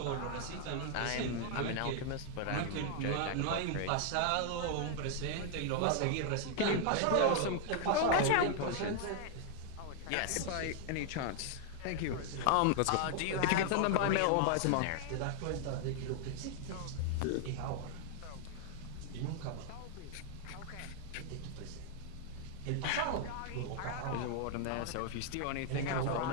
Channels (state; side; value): different; both; correlation 0.00